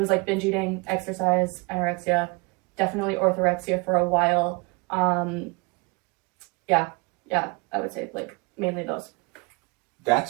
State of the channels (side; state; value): left; quieter; 28.9 dB